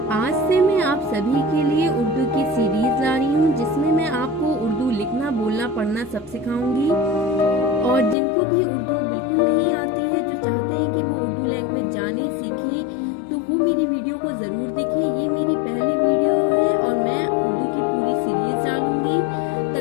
आज से मैं आप सभी के लिए उर्दू की सीरीज ला रही हूँ जिसमें मैं आपको उर्दू लिखना बोलना पढ़ना सब सिखाऊंगी। और जिनको भी उर्दू बिल्कुल नहीं आती है, जो चाहते हैं कि वो उर्दू लैंग्वेज जाने सीखें, तो वो मेरी वीडियो को ज़रूर देखें। ये मेरी पहली वीडियो है और मैं उर्दू की पूरी सीरीज डालूंगी।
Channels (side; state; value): right; drops out; at 8.2 s